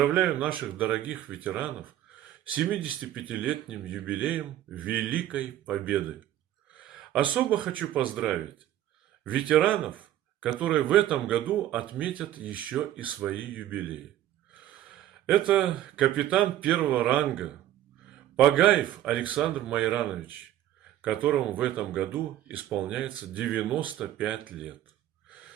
наших дорогих ветеранов с 75-летним юбилеем Великой Победы. Особо хочу поздравить ветеранов, которые в этом году отметят еще и свои юбилеи. Это капитан первого ранга Пагаев Александр Майранович, которому в этом году исполняется 95 лет.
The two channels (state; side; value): quieter; left; 12.8 dB